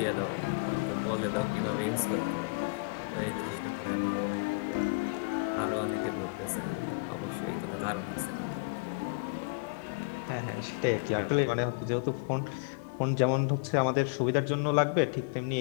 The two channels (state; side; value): quieter; right; 29.9 dB